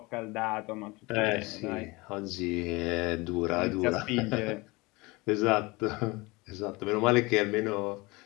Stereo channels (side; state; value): right; quieter; 24.0 dB